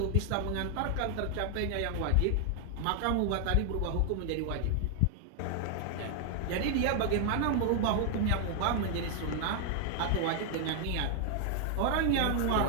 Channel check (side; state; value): both; different; correlation 0.00